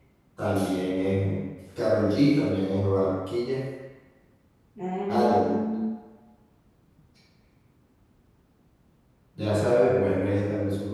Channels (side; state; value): both; identical; correlation 1.00